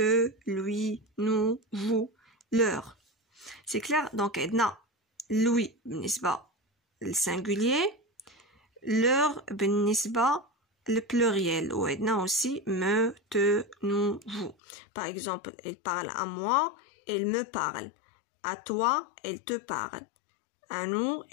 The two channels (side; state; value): right; drops out; at 14.6 s